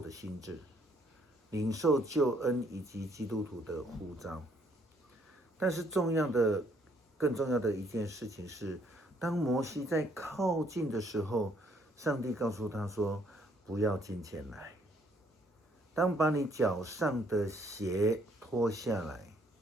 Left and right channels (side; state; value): both; normal; correlation 0.66